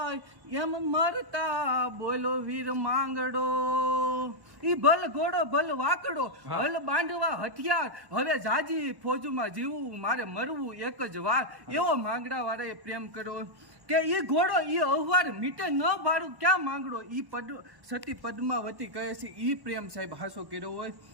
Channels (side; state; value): left; late; 1.1 ms